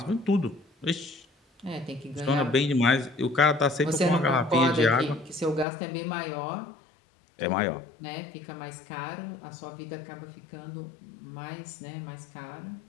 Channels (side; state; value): right; drops out; at 5.7 s